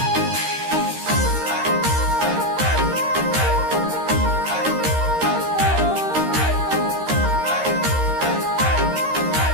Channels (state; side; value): late; left; 13 ms